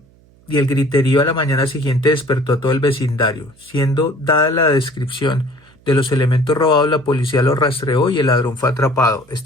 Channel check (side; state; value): right; noise; hum, 30 dB below the sound